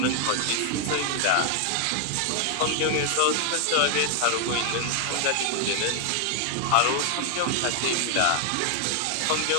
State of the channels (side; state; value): both; different; correlation 0.00